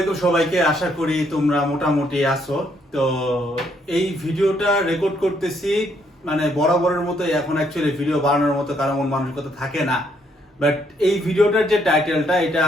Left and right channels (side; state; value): both; normal; correlation 0.71